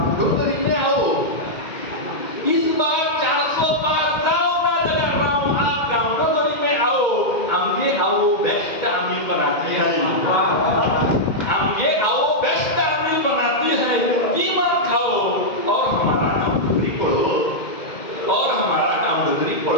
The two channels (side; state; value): right; late; 2.1 ms